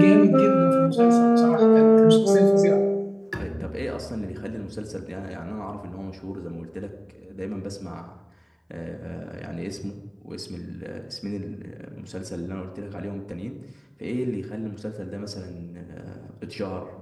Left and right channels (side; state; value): both; identical; correlation 1.00